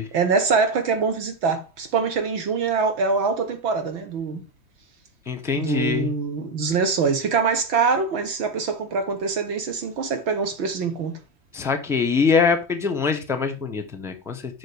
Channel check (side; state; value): left; late; 3.2 ms